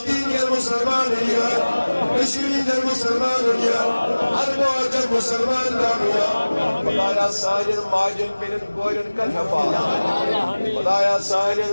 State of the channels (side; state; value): both; inverted; correlation -1.00